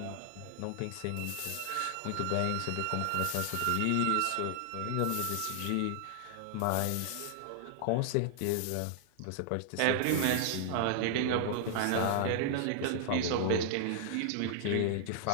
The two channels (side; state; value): both; different; correlation -0.01